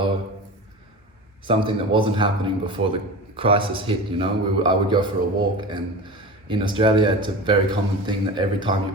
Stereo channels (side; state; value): both; normal; correlation 0.31